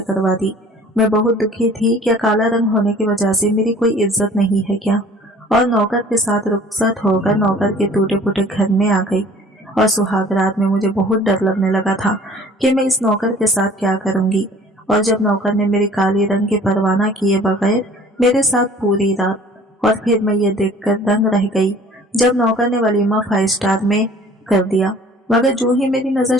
करवा दी। मैं बहुत दुखी थी। क्या काला रंग होने की वजह से मेरी कोई इज्जत नहीं है क्या? और नौकर के साथ रुखसत होकर नौकर के टूटे फूटे घर में आ गई। और सुहाग रात में मुझे बहुत डर लगने लगा था कि मैं इस नौकर के साथ क्या करूंगी। और जब नौकर ने मेरी काली रंग की परवाह किए बगैर मेरे साथ पूरी रात, और फिर मैं ये देखकर दंग रह गई जब नौकर ने वलीमा 5 स्टार में कर दिया। मगर जो ही मेरी नजर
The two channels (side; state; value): both; normal; correlation 0.50